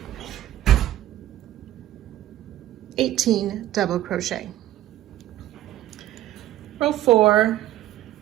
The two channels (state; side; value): quieter; left; 13.8 dB